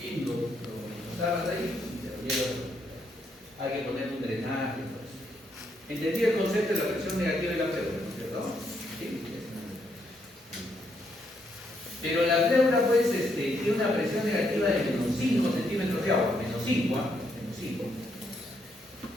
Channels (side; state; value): both; normal; correlation 0.75